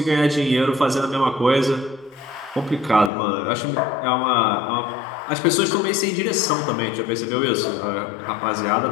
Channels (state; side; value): drops out; right; at 3.1 s